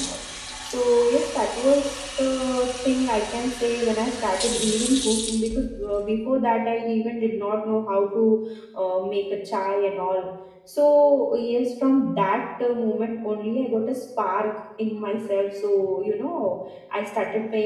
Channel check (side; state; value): both; identical; correlation 1.00